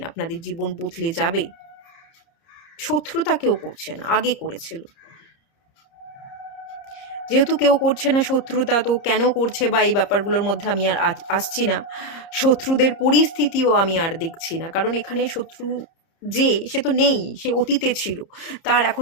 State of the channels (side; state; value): right; late; 30 ms